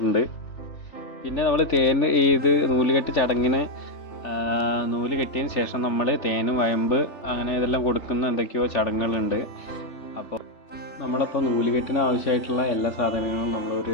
പിന്നെ നമ്മൾ നൂലുകെട്ട് ചടങ്ങിന് നൂല് കെട്ടിയതിന് ശേഷം നമ്മൾ തേനും വയമ്പ് അങ്ങനെ ഇതെല്ലാം കൊടുക്കുന്ന എന്തൊക്കെയോ ചടങ്ങുകളുണ്ട്. അപ്പോൾ നമ്മളപ്പോൾ നൂലുകെട്ടിന് ആവശ്യമായിട്ടുള്ള എല്ലാ സാധനങ്ങളും നമ്മളൊരു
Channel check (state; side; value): late; right; 3.3 ms